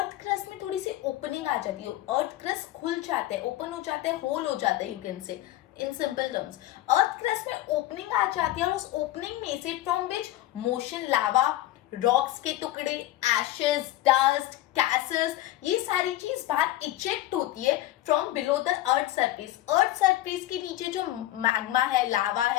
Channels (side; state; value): right; quieter; 15.3 dB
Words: crust में थोड़ी सी opening आ जाती है. Earth crust खुल जाते हैं, open हो जाते हैं, hole हो जाते हैं, you can say in simple terms. Earth crust में opening आ जाती है और उस opening में से from which motion, lava, rocks के टुकड़े, ashes, dust, gases, ये सारी चीज बाहर इजेक्ट होती है from below the earth surface. Earth surface के नीचे जो मैग्मा है, लावा